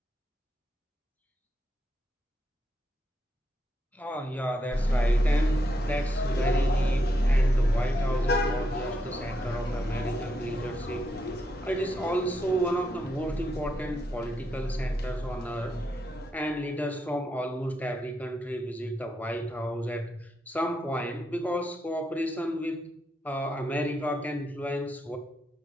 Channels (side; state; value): both; normal; correlation 0.81